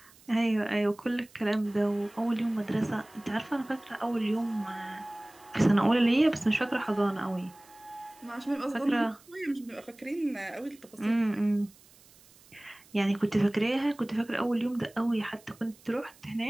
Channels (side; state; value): right; noise; hiss, 26 dB below the sound